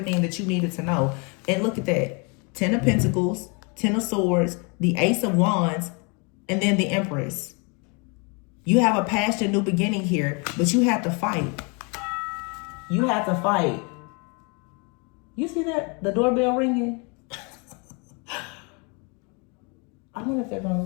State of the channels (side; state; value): right; quieter; 32.8 dB